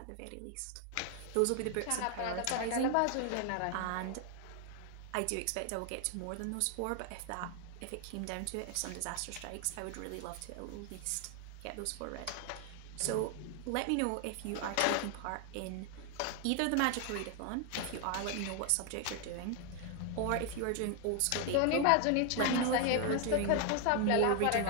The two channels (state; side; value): different; both; correlation 0.01